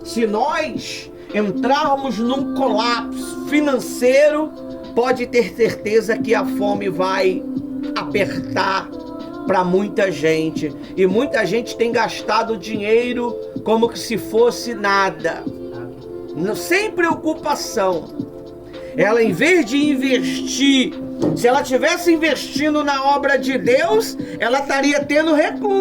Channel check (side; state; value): both; identical; correlation 1.00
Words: se nós entrarmos num colapso financeiro, pode ter certeza que a fome vai apertar para muita gente. E muita gente tem gastado dinheiro como que se fosse nada. Sem preocupação. Ela, em vez de investir, se ela tivesse investindo na obra de Deus, ela estaria tendo